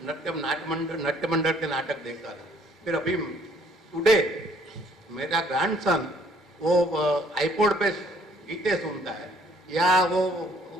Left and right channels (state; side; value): normal; both; correlation 0.61